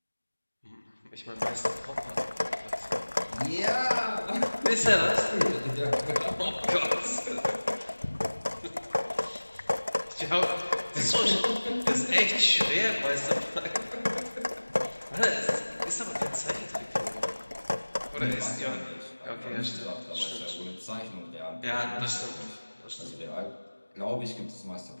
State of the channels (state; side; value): inverted; both; correlation -1.00